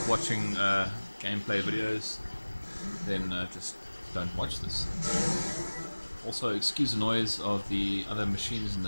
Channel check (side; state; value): both; inverted; correlation -1.00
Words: watching gameplay videos, then just don't watch this. Also, excuse the noise of the other machines in the